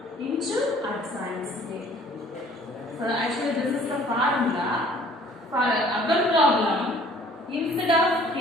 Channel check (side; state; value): both; normal; correlation 0.54